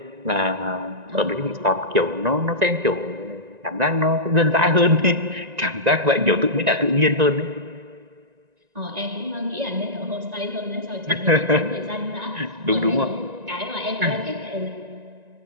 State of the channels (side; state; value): left; late; 1.9 ms